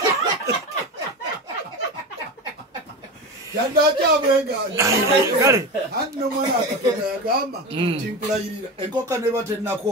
Yandacha abweganye. Kale. Hanno mwana akatoka yagamba timpulayirira. Enkoka neba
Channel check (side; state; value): both; normal; correlation 0.24